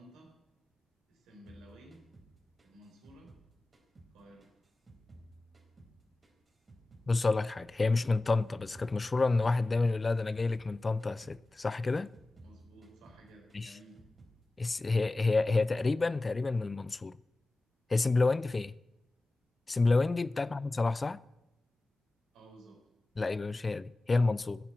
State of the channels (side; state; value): right; quieter; 3.0 dB